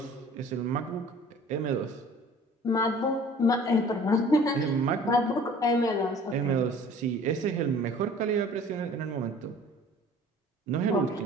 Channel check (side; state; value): both; normal; correlation 0.48